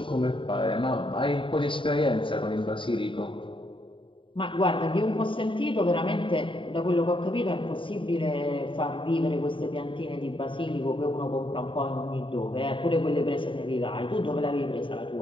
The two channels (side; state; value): right; late; 0.25 ms